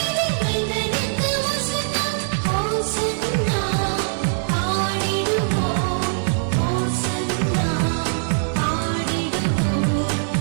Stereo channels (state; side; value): silent; left; 64 dB below the other